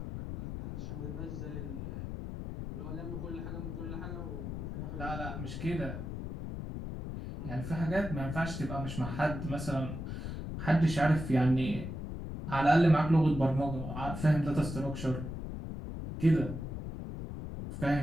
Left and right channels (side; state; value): left; noise; rumble, 6 dB below the sound